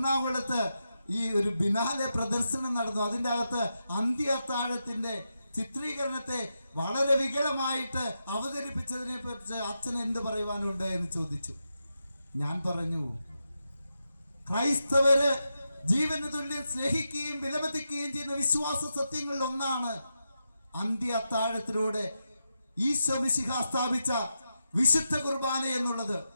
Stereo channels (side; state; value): both; inverted; correlation -0.87